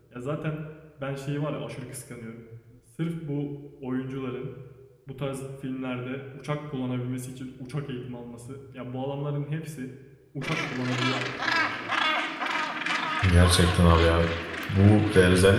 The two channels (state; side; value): identical; both; correlation 1.00